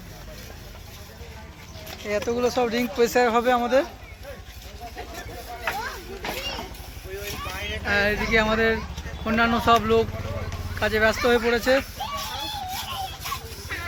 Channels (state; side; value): identical; both; correlation 1.00